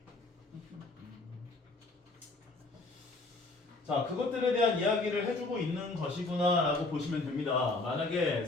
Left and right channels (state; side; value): quieter; right; 3.2 dB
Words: 자, 그것들에 대한 이야기를 해주고 있는 것이구나 라고 보시면 됩니다. 만약에